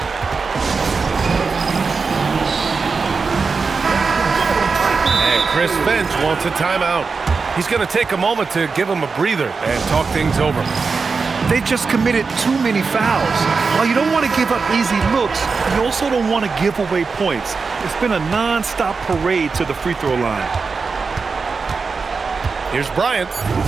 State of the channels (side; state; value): left; quieter; 4.8 dB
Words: And Chris Finch wants a timeout. He's going to take a moment to give him a breather and talk things over. They just committed too many fouls. While you don't want to give up easy looks, you also don't want to give away points. It's been a non-stop parade to the free throw line. Here's Bryant.